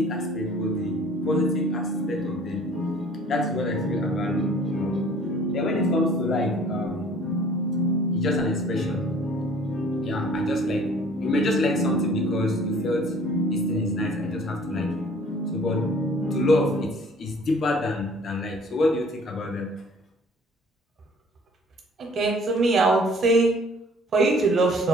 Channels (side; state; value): both; normal; correlation 0.53